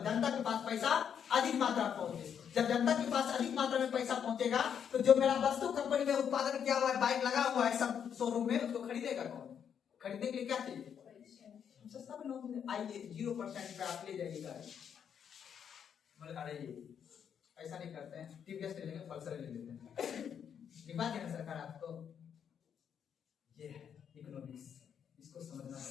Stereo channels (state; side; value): quieter; right; 8.1 dB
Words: के पास पैसा अधिक मात्रा में पहुंचे। जब जनता के पास अधिक मात्रा में पैसा पहुंचेगा तो जो मेरा वस्तु कंपनी में उत्पादन किया हुआ है, बाइक लगा हुआ है सब शोरूम में, उसको खरीदेगा कौन? खरीदने के लिए क्या चाहिए? सस्ता में लोन। आइए 0% पे आप ले जाइएगा, मतलब अरे ऐसा नहीं करते हैं, टीवीएस ले लेंगे, पल्सर ले लेते हैं, दिखा देना सरकार आपको। ये है इकोनॉमिक्स, इसको समझना